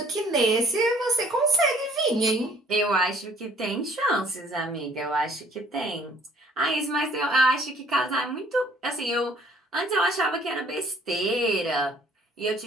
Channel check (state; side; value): normal; both; correlation 0.58